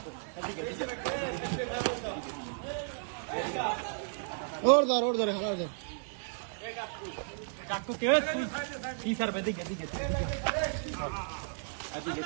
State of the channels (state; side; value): silent; left; digital silence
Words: ওর ধর হালার ধর কাকু কে কি স্যার দিকে